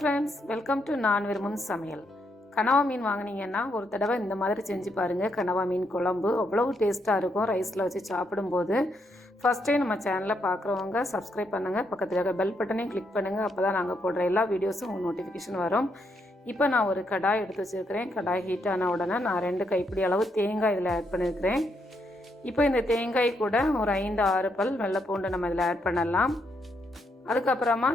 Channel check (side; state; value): both; normal; correlation 0.78